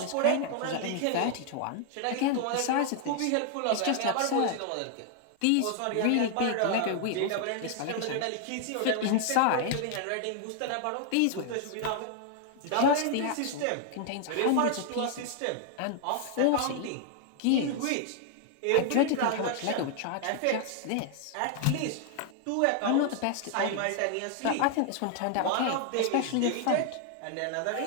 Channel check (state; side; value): different; both; correlation 0.00